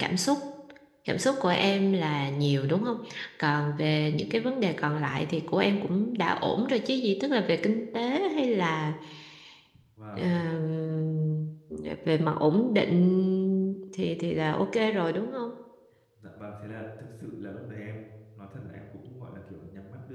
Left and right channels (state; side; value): identical; both; correlation 1.00